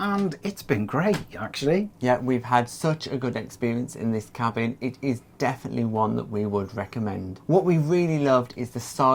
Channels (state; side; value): identical; both; correlation 1.00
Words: it's been great actually. Yeah, we've had such a good experience in this cabin. It is definitely one that we would recommend. What we really loved is the